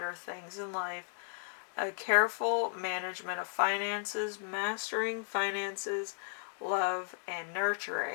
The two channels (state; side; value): silent; right; digital silence